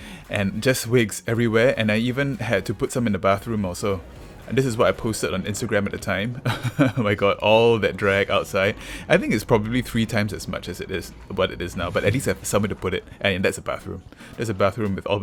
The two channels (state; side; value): identical; both; correlation 1.00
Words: and just wigs everywhere. And I even had to put some in the bathroom also. And this is what I posted on Instagram at the time. Oh my god, all that drag outside. I think it's probably 3 times as much as it is what it is now, but at least I have somewhere to put it. And that's a bathroom. There's a bathroom with all